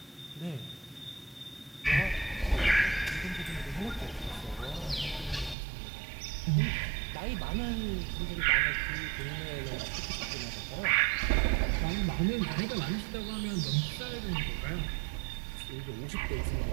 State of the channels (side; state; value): left; drops out; at 5.6 s